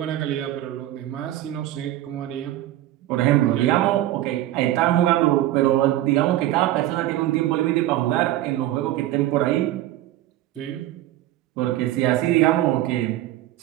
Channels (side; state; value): left; quieter; 14.4 dB